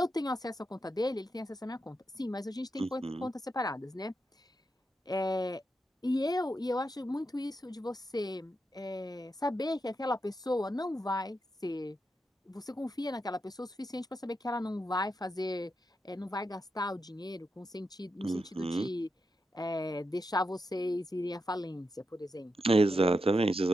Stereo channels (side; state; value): both; normal; correlation 0.86